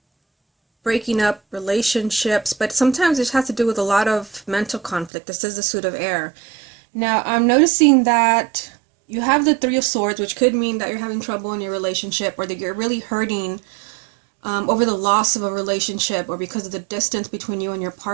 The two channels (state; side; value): drops out; left; at 5.1 s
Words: breaking up relationships, but sometimes it has to do with a lot of mental conflict. This is the Suit of Air. Now, I'm noticing that you have the Three of Swords, which could mean that you're having trouble in your relationship, or that you're really hurting over the loss of a relationship, or because of the distance between you and your